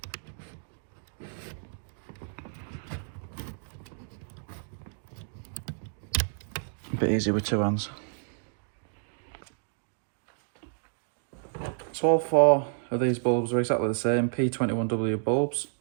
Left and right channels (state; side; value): silent; left; digital silence